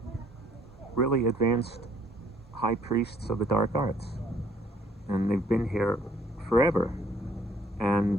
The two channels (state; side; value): normal; both; correlation 0.62